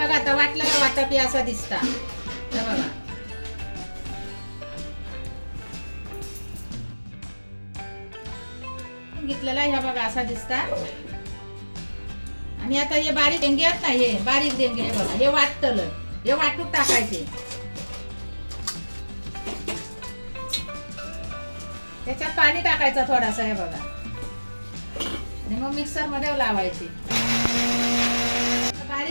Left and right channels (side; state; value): both; inverted; correlation -1.00